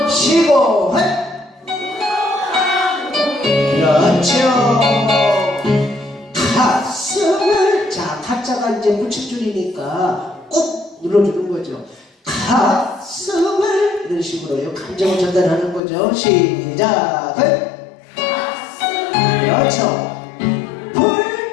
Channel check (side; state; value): right; drops out; at 15.8 s